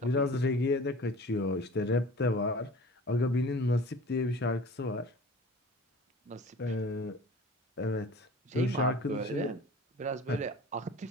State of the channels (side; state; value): both; normal; correlation 0.42